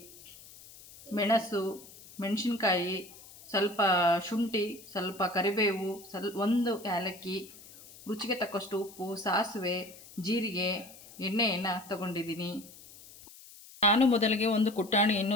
ಮೆಣಸು, ಮೆಣಸಿನ್ಕಾಯಿ, ಸ್ವಲ್ಪ ಶುಂಠಿ, ಸ್ವಲ್ಪ ಕರಿಬೇವು, ಒಂದು ಏಲಕ್ಕಿ, ರುಚಿಗೆ ತಕ್ಕಷ್ಟು ಉಪ್ಪು, ಸಾಸಿವೆ, ಜೀರಿಗೆ, ಎಣ್ಣೆಯನ್ನು ತಗೊಂಡಿದ್ದೀನಿ. ನಾನು ಮೊದಲಿಗೆ ಒಂದು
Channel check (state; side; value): noise; left; hiss, 20 dB below the sound